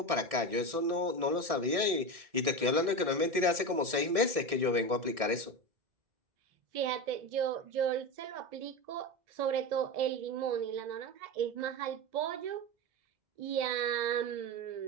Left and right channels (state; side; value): late; left; 1.6 ms